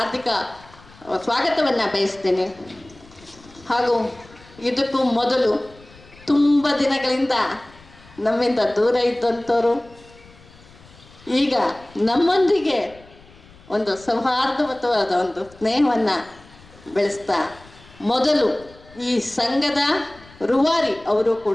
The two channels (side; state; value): left; noise; rumble, 24 dB below the sound